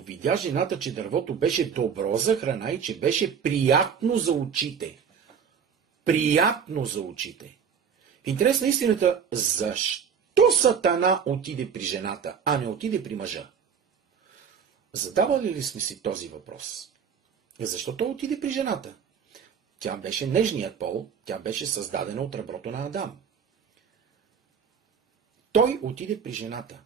жената, че дървото беше добро за храна и че беше приятно за очите. Приятно за очите. В интерес на истината, защо Сатана отиде при жената, а не отиде при мъжа? Задавали ли сме си този въпрос? Защо той отиде при жената? Тя беше нежният пол, тя беше създадена от реброто на Адам. Той отиде при жената.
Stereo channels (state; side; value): quieter; left; 7.0 dB